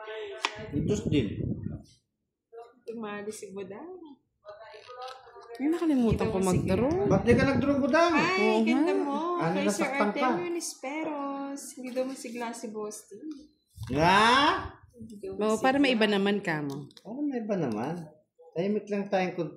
Diyos din. Tumali si Budang. Ay, nakalimutan ko mag-draw. Ba't di ka nag-draw budang? Ay, ganda mo. Ano, Kay Sir nasaktan ka? Artemio Nisperos. Hindi daw masigla si Boss T. Nga? Hindi daw Oo, para may iba naman ka mo. Oh, may iba naman. Tahimik lang tayong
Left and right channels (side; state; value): both; identical; correlation 1.00